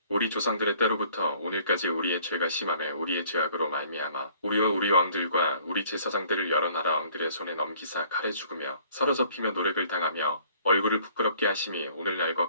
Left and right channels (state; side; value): inverted; both; correlation -0.56